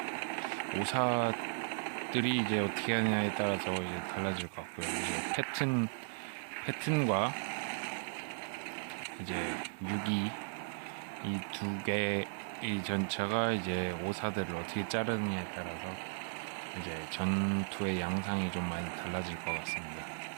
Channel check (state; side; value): silent; left; 54 dB below the other